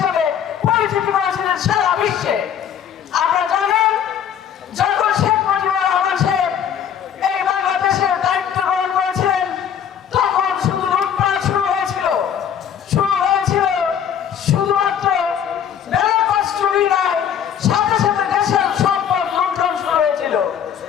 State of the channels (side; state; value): right; quieter; 8.7 dB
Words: পরিচিতি করেছিলেন সারা বিশ্বে। আমরা জানেন, যখন শেখ মুজিবুর রহমান সাহেব এই বাংলাদেশের দায়িত্ব গ্রহণ করেছিলেন, তখন শুধু লুটপাট শুরু হয়েছিল শুধুমাত্র ব্যালট চুরি নয়, সাথে সাথে দেশের সম্পদ লুণ্ঠন শুরু হয়েছিল,